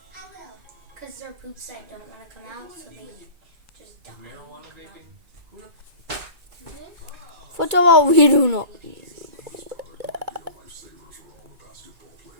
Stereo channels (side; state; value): left; late; 2.2 ms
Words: I will. Because they're poops that don't want to come out, so they just die. Marijuana vaping? First of all, we do not.